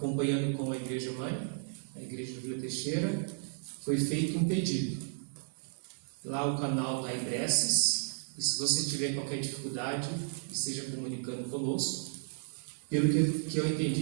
com a Igreja Mãe, a Igreja do Vila Teixeira, foi feito um pedido. Lá o canal da Ibreces, e se você tiver qualquer dificuldade, esteja comunicando conosco. Pelo que eu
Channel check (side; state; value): left; silent; 55 dB below the other